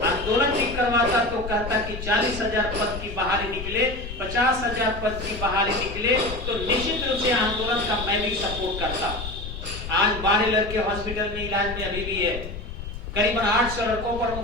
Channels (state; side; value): noise; left; rumble, 8 dB below the sound